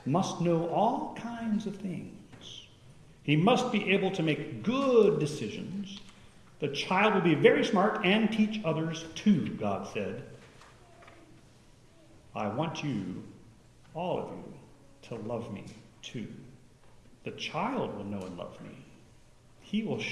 must know all kinds of things. He must be able to make good decisions. The child will be very smart and teach others too, God said. I want you, all of you, to love me too. The child will know and love me. He will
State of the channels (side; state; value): both; identical; correlation 1.00